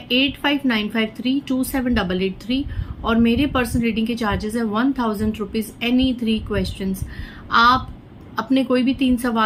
8595327883 और मेरे पर्सनल रीडिंग के चार्जेस है 1000 रुपीज एनी 3 क्वेश्चंस। आप अपने कोई भी 3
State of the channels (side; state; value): both; identical; correlation 1.00